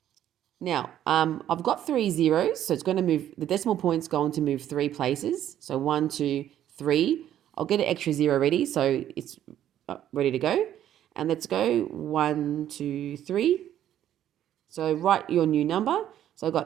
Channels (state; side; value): quieter; left; 11.4 dB